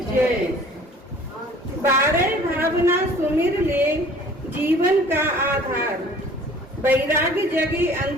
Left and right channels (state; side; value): normal; both; correlation 0.50